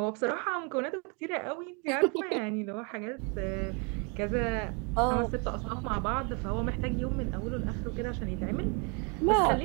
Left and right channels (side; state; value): left; quieter; 33.8 dB